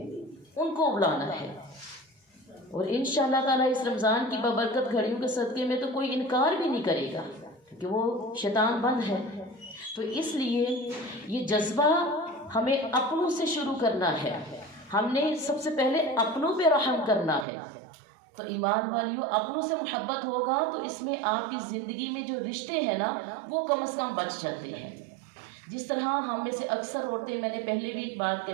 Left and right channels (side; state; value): left; drops out; at 17.4 s